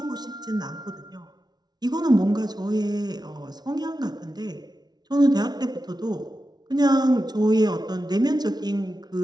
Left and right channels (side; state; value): left; late; 0.19 ms